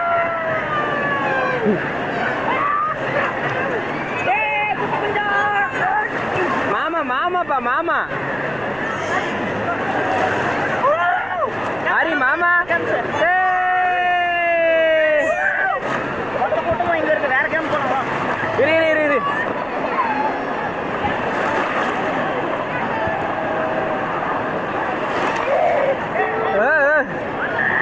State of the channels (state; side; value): noise; right; rumble, 21 dB below the sound